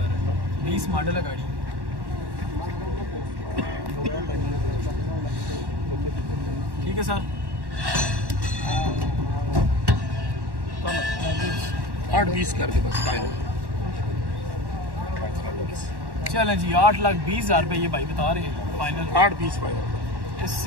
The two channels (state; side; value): late; left; 1.1 ms